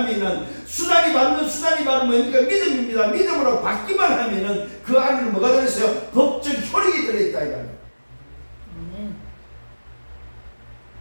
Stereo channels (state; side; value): inverted; both; correlation -1.00